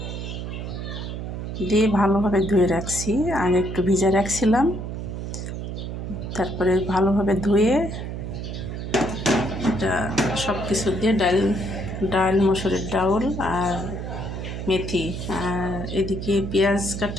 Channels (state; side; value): noise; right; hum, 6 dB below the sound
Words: দিয়ে ভালোভাবে ধুয়ে রাখছি। আগে একটু ভিজে রাখছিলাম, তারপরে ভালোভাবে ধুয়ে এটা সব কিছু দিয়ে ডাল মসুরির ডাউল আর মেথি, আর এদিকে পেঁয়াজ